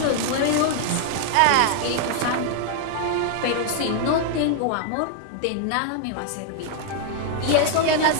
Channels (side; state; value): both; different; correlation 0.00